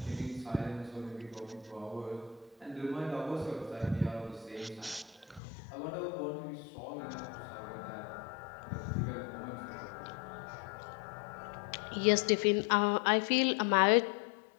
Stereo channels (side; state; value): right; drops out; at 5.4 s